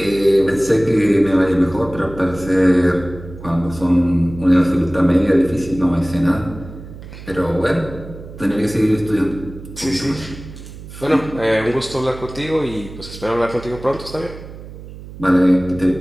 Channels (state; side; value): noise; right; hum, 15 dB below the sound